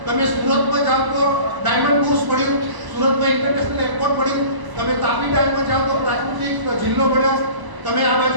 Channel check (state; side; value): late; left; 1.0 ms